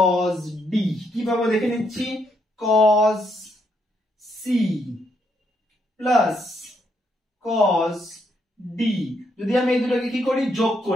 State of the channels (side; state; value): both; normal; correlation 0.76